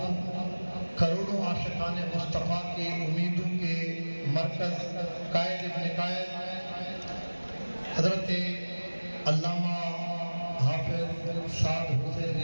کروڑوں عاشقان مصطفیٰ کے امیدوں کے مرکز قائد ابن قائد حضرت علامہ حافظ سعد حسین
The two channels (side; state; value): both; inverted; correlation -1.00